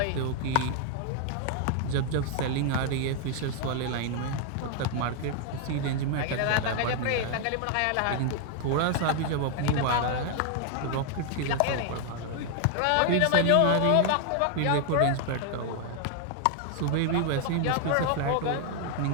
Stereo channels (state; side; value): different; both; correlation 0.00